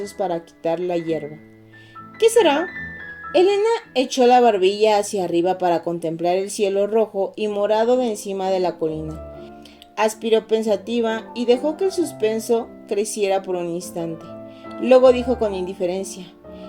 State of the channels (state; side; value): identical; both; correlation 1.00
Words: para quitar la hierba. ¿Qué será? Elena echó la barbilla hacia arriba para contemplar el cielo rojo y morado de encima de la colina. Aspiró pensativa y dejó que el suspenso creciera por un instante. Luego dijo con indiferencia,